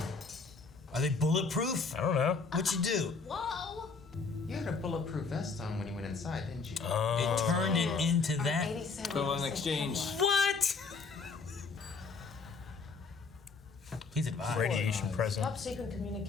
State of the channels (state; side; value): quieter; right; 4.6 dB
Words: Are they bulletproof? I don't know. What'd you do? Whoa! You had a bulletproof vest on when you went inside, didn't you? It turned it into that. Go on exchange. What? He's advised. Radiation present. Top secret